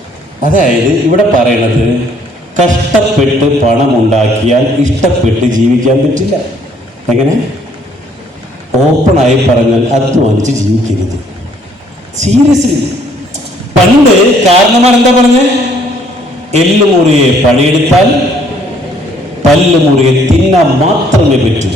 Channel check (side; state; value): both; normal; correlation 0.63